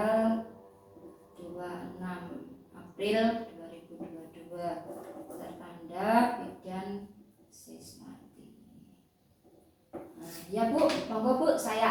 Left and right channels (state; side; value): identical; both; correlation 1.00